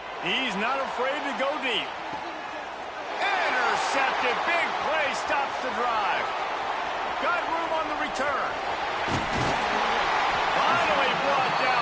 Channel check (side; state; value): both; identical; correlation 1.00